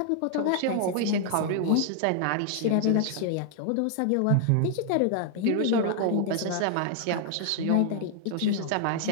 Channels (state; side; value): different; both; correlation 0.00